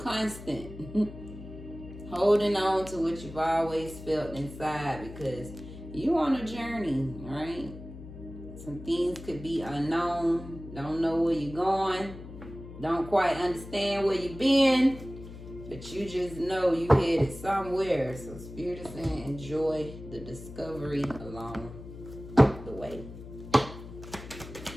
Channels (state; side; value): noise; left; hum, 14 dB below the sound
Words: Holding on to what you've always felt inside, because you on a journey, right? Some things could be unknown. Don't know where you're going. Don't quite understand where you've been, but you just know you headed somewhere. So Spirit is saying enjoy the discovery along the way.